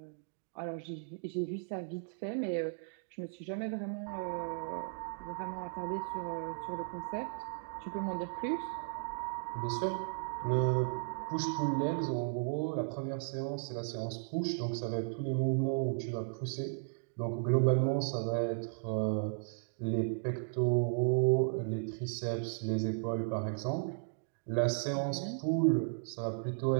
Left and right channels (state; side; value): silent; left; digital silence